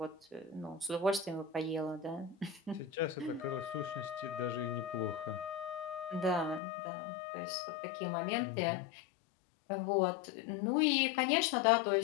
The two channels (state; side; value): drops out; right; at 6.6 s